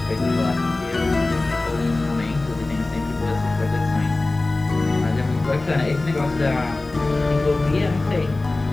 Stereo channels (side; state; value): right; quieter; 3.1 dB